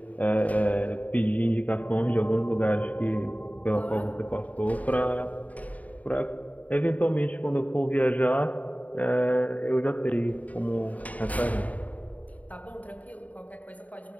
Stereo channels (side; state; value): right; late; 0.072 ms